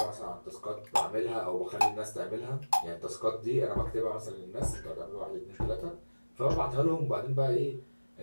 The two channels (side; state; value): both; inverted; correlation -1.00